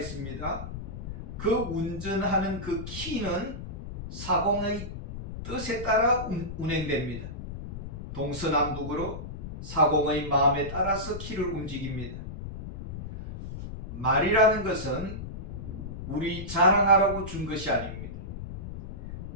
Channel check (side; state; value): left; noise; rumble, 9 dB below the sound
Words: 그 운전하는 그 키는 사공의 뜻에 따라 운행됩니다. 동서남북으로 사공의 마음에 따라서 키를 움직입니다. 말이라는 것은 우리 자랑하라고 준 것이 아닙니다.